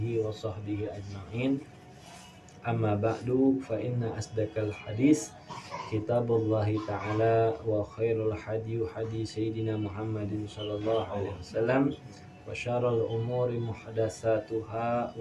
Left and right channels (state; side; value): identical; both; correlation 1.00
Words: wa sahbihi ajma'in. Amma ba'du, fa inna asdaqal hadis kitabullahi ta'ala wa khairul hadi sayyidina Muhammadin sallallahu alaihi wasallam wa syarrul umuri muhdatsatuha